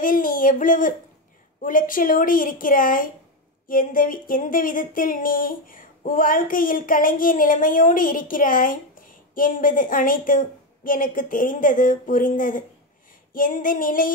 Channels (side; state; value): both; normal; correlation 0.11